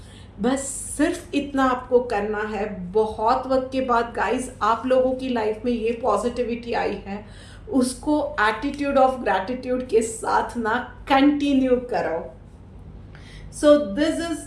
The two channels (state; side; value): identical; both; correlation 1.00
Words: बस सिर्फ इतना आपको करना है। बहुत वक्त के बाद गाइस आप लोगों की लाइफ में ये पॉजिटिविटी आई है, उसको एटीट्यूड ऑफ ग्रैटिट्यूड के साथ ना कंटिन्यू करो। So this